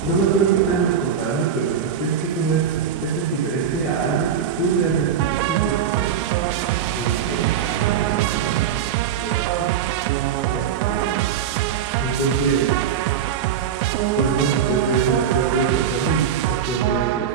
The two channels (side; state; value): left; quieter; 8.2 dB